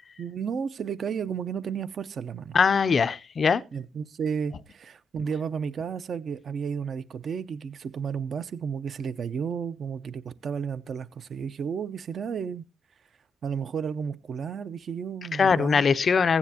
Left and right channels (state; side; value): normal; both; correlation 0.79